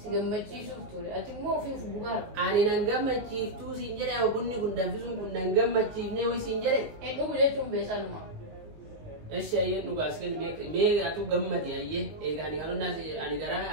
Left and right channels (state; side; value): late; left; 19 ms